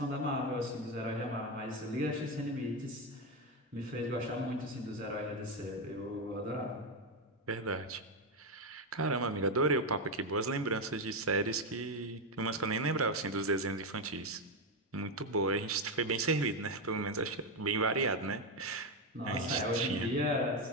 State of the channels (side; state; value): both; normal; correlation 0.08